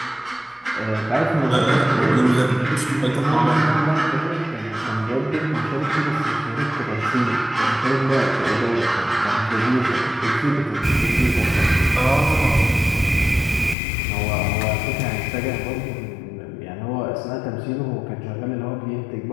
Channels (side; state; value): right; drops out; at 13.8 s